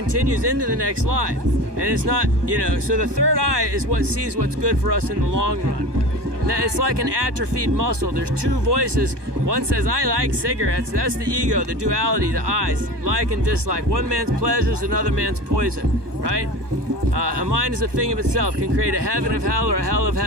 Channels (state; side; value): late; left; 1.2 ms